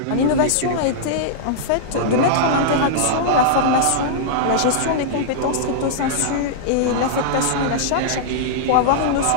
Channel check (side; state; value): both; different; correlation -0.02